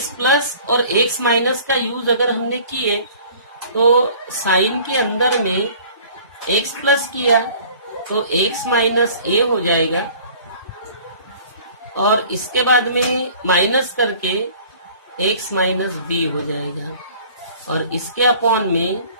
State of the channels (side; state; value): both; inverted; correlation -0.49